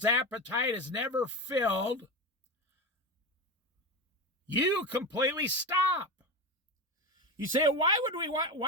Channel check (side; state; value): both; normal; correlation 0.20